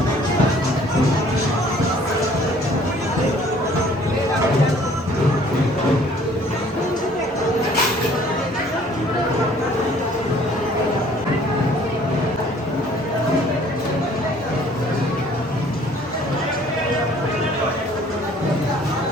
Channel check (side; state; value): both; normal; correlation 0.56